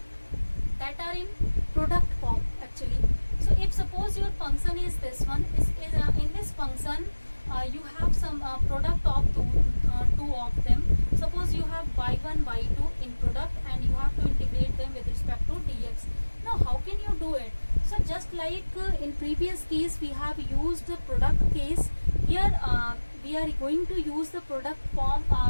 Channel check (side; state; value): both; inverted; correlation -1.00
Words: that are in product form actually. So if suppose your function is this one, in this function you have some product of two of them. Suppose you have y1, y2 in product, and you have to integrate them with respect to dx. Now how can you do it? So just like in previous case we have used the product case, here we are going to use the product form